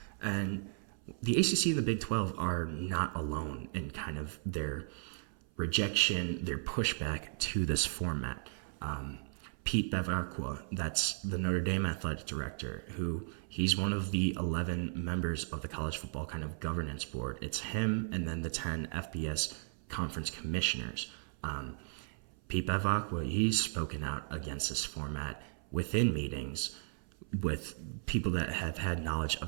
And the ACC and the Big 12 are not alone in kind of their rejection, their pushback to this format. Pete Bevacqua, that's the Notre Dame athletic director, who he's one of the 11 members of the college football kind of governance board. It's him and then the 10 FBS conference commissioners. Pete Bevacqua, he's spoken out against this format within meetings with people that have had knowledge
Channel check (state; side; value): silent; left; 54 dB below the other